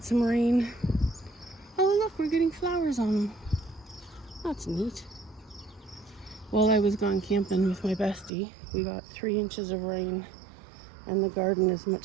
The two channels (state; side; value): drops out; left; at 8.3 s